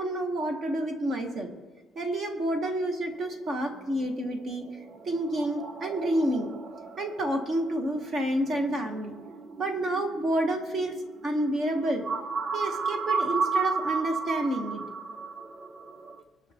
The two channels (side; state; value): both; normal; correlation 0.76